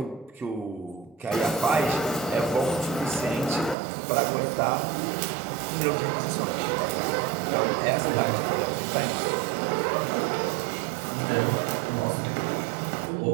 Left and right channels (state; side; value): drops out; left; at 3.8 s